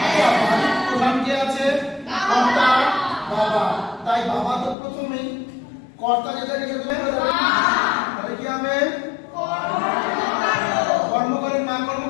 আচ্ছা, বাড়ির প্রধান কে আছে? কর্তা, বাবা। তাই বাবা তো প্রথমেই, কর্তা যেটাকে সে ধরে যাবে, তাহলে কি হবে? কর্ম করেন, মা কর্ম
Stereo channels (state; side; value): drops out; right; at 4.8 s